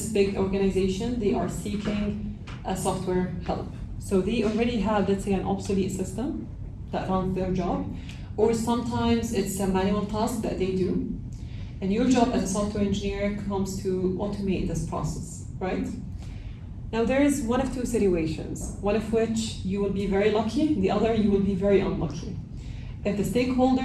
big organization, they are seeking a software help. So they already have, let's say, an obsolete system that runs their job, or sometimes it's a manual task that they do. And your job as a software engineer comes to automate this process, right? Now there is one of 2 situations, one of which you will be very lucky, the other you will be very unlucky. If the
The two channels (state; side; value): identical; both; correlation 1.00